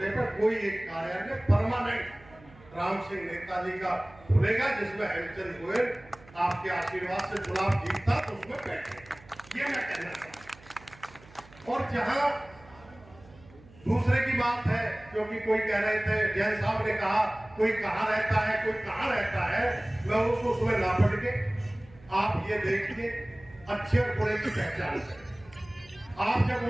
पर कोई एक कार्यालय परमानेंट राम सिंह नेताजी का खुलेगा, जिसमें हेमचंद गोयल आपके आशीर्वाद से चुनाव जीतता तो उसमें बैठे, ये मैं कहना चाहता हूं। और जहां दूसरे की बात है, क्योंकि कोई कह रहे थे, जैन साहब ने कहा कोई कहां रहता है, कोई कहां रहता है, मैं उसको उसमें ना पढ़ के आप ये देखिए, अच्छे और बुरे की पहचान करें। आप जब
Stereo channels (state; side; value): noise; right; hum, 23 dB below the sound